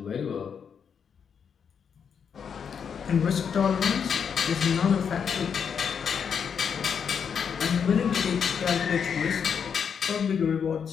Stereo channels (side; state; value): right; quieter; 7.0 dB